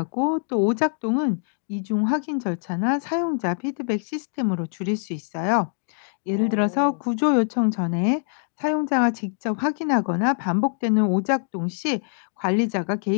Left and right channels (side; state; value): right; silent; digital silence